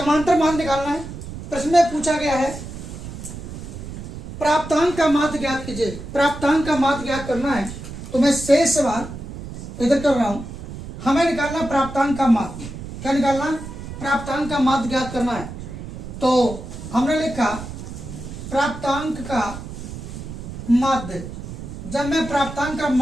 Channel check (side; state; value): right; noise; rumble, 10 dB below the sound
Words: मान निकालना है। प्रश्न में पूछा गया है प्राप्तांक का माध्य ज्ञात कीजिए। प्राप्तांक का माध्य ज्ञात करना है तो मैं शेष सवाल इधर कर रहा हूं। हमें निकालना प्राप्तांक का माध्य। क्या निकालना? प्राप्तांक का माध्य ज्ञात करना है। तो हमने लिखा प्राप्तांक का माध्य। जब मैं प्राप्तांक का